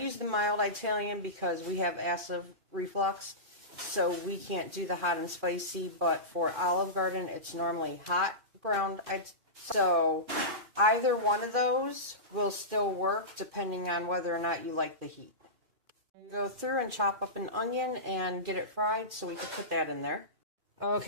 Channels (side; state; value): left; late; 2.4 ms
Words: the mild Italian because we have acid reflux, so we can't do the hot and spicy, but for Olive Garden, it's normally hot ground. So either one of those will still work depending on whether or not you like the heat. Go through and chop up an onion and get it fried so we can put that in there.